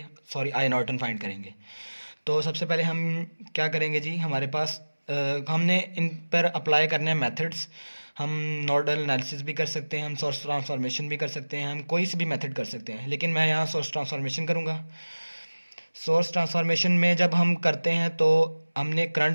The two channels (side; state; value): both; inverted; correlation -1.00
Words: सॉरी आई नॉर्टन फाइंड करेंगे। तो सबसे पहले हम क्या करेंगे जी, हमारे पास हमने इन पर अप्लाई करने हैं मेथड्स। हम नोडल एनालिसिस भी कर सकते हैं, हम सोर्स ट्रांसफॉर्मेशन भी कर सकते हैं, हम कोई सी भी मेथड कर सकते हैं, लेकिन मैं यहाँ सोर्स ट्रांसफॉर्मेशन करूँगा। सोर्स ट्रांसफॉर्मेशन में जब हम करते हैं तो हमने